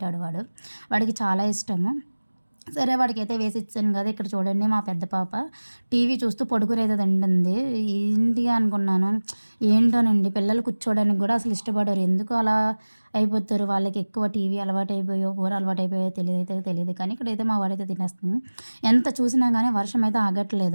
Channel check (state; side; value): inverted; both; correlation -1.00